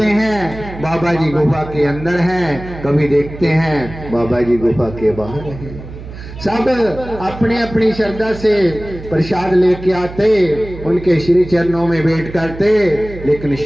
हैं बाबा जी गुफा के अंदर हैं, कभी देखते हैं बाबा जी गुफा के बाहर हैं। सब अपनी अपनी श्रद्धा से प्रसाद लेके आते, उनके श्री चरणों में भेंट करते, लेकिन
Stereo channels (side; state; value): right; noise; hum, 13 dB below the sound